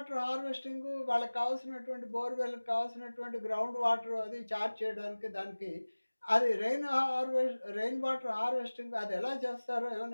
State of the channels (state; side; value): inverted; both; correlation -1.00